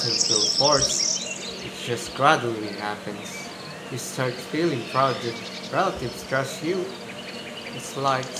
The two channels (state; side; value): identical; both; correlation 1.00